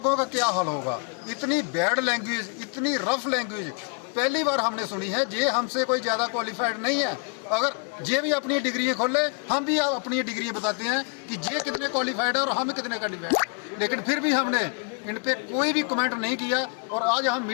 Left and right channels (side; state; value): right; quieter; 34.2 dB